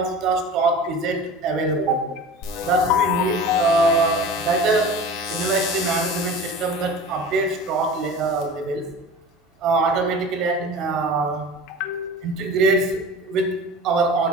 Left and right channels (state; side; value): normal; both; correlation 0.36